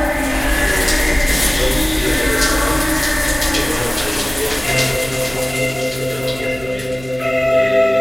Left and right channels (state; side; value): noise; right; hum, 17 dB below the sound